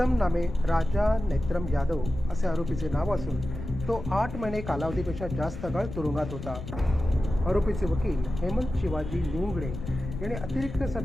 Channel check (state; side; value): noise; left; rumble, 8 dB below the sound